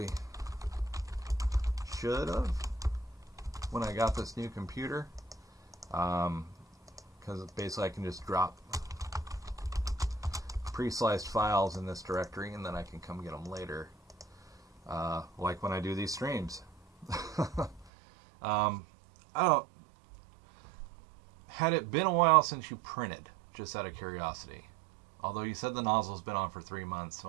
should have when I got this new computer, because basically I can just drop pre-sliced files in this directory, and then I can come get them later, like when I do these streams. Had it been a while since you printed, just out of curiosity? Although you said the nozzle's been on for 3 months, so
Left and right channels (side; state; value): left; drops out; at 17.9 s